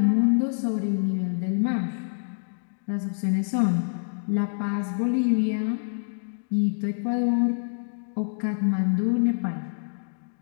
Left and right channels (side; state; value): right; silent; digital silence